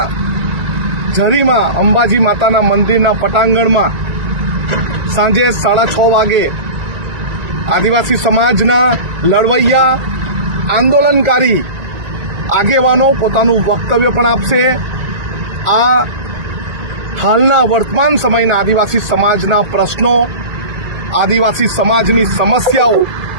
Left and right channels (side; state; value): left; late; 1.4 ms